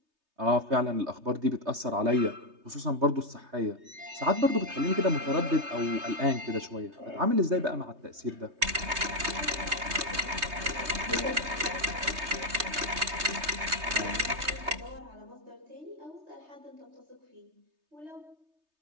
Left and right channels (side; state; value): left; late; 3.3 ms